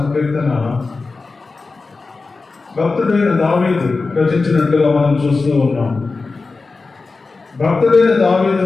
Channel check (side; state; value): right; quieter; 4.0 dB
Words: భక్తుడైన దావీదు రచించినట్టుగా మనం చూస్తూ ఉన్నాం. భక్తుడైన